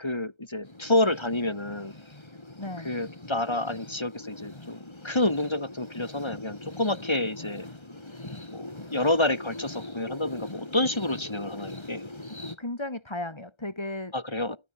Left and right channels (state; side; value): late; right; 1.3 ms